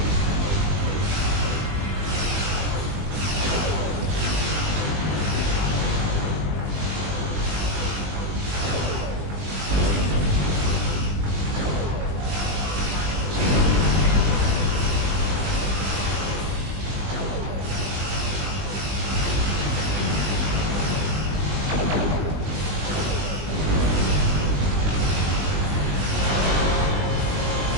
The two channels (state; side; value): late; left; 20 ms